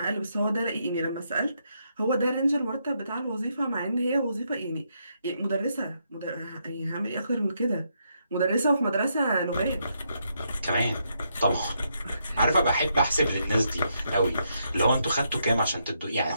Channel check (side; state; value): both; inverted; correlation -0.78